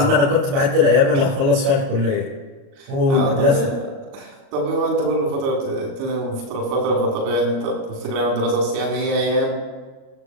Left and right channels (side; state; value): left; late; 37 ms